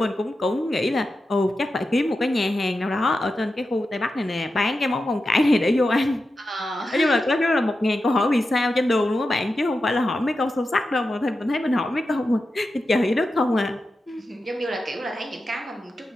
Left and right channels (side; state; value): both; normal; correlation 0.91